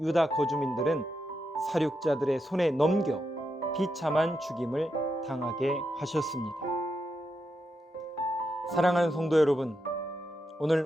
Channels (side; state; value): both; normal; correlation 0.85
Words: 유다 거주민들은 사륙자들의 손에 넘겨 비참한 죽임을 당하게 하셨습니다. 사랑하는 성도 여러분,